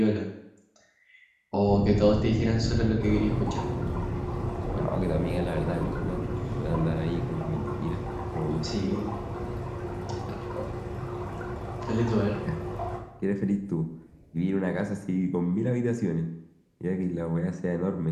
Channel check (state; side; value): identical; both; correlation 1.00